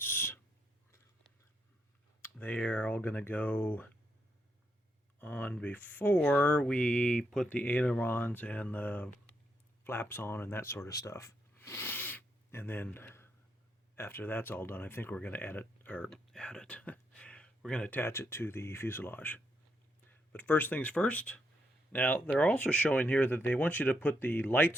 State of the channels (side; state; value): both; normal; correlation 0.79